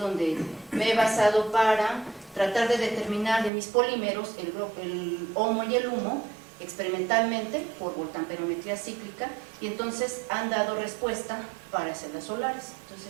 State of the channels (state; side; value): drops out; left; at 3.5 s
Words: me he basado para tratar de determinar de mis polímeros el HOMO y el HUMO experimentalmente por voltamperometría cíclica, y entonces han dado respuesta para celdas solares.